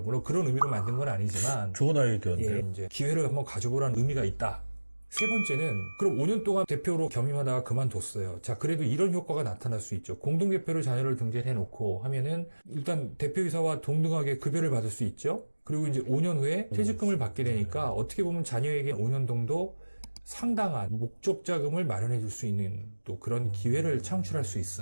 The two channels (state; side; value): inverted; both; correlation -1.00